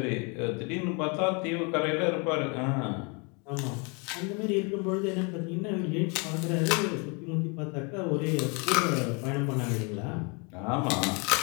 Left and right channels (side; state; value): right; quieter; 32.5 dB